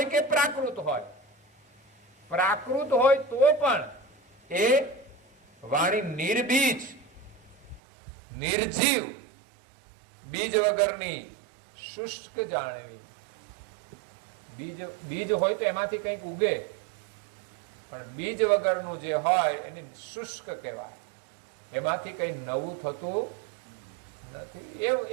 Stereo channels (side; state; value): left; drops out; at 7.8 s